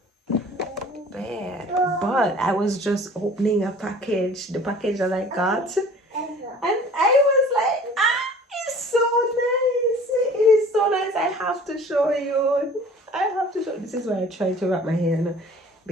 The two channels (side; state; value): both; normal; correlation 0.47